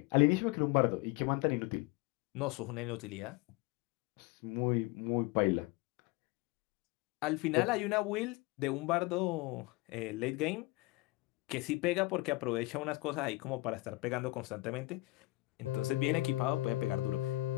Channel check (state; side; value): quieter; right; 20.9 dB